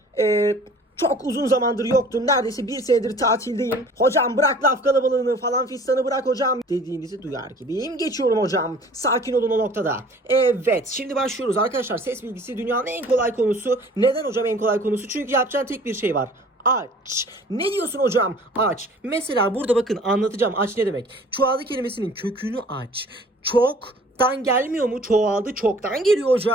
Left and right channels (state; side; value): normal; both; correlation 0.49